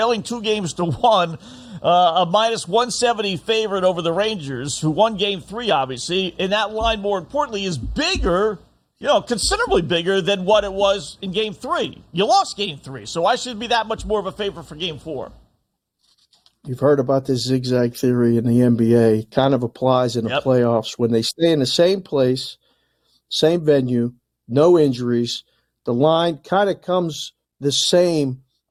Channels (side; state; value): both; identical; correlation 1.00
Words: 2-1, a minus 170 favorite over the Rangers, who won Game 3, obviously, and that line, more importantly, is bigger, you know, considerably bigger than what it was in Game 3. You lost Game 3, so why should it be that much more of a favorite for Game 4? You've heard about this zigzag theory in the NBA. It kind of applies in the playoffs. When they stay in the same place, same venue, no injuries, the line kind of comes the same